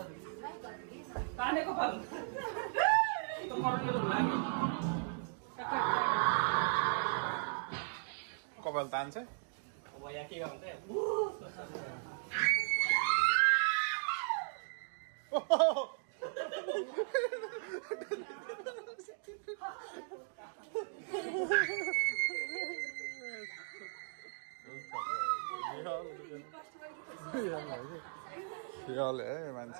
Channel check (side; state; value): left; silent; digital silence